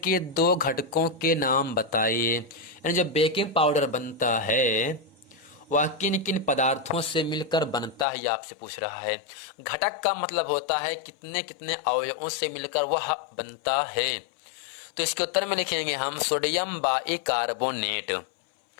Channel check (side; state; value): right; drops out; at 8.1 s